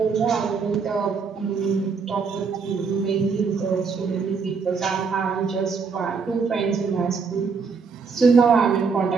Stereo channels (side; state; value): left; quieter; 5.3 dB